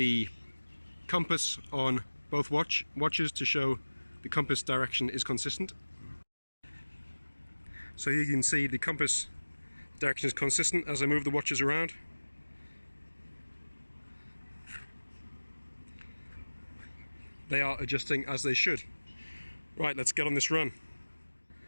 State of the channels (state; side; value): inverted; both; correlation -1.00